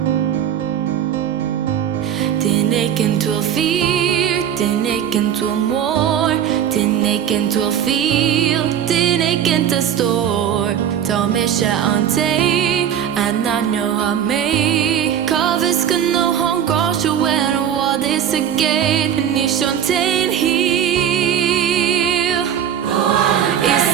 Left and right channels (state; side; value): quieter; left; 9.4 dB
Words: Tineken to a fear, tineken to a more, tineken to a feel, tineken to store. Ta misha ante, ananyo hame. Kaviska no hon gosh when what is a gate and you shantain here.